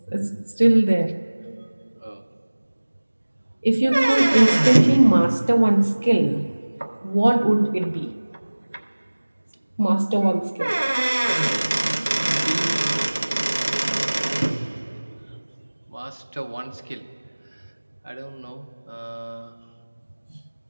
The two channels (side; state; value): both; inverted; correlation -1.00